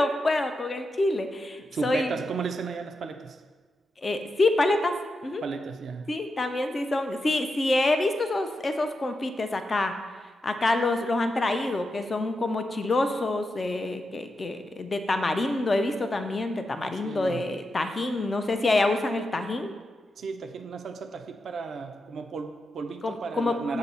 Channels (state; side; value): normal; both; correlation 0.87